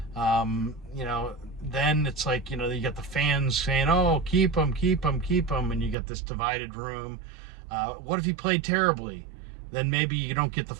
You know, then it's like, you know, you got the fans saying, oh, keep him, keep him, keep him, and you got this divided room. What if he played terribly? Then maybe you don't get the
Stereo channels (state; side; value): drops out; left; at 6.0 s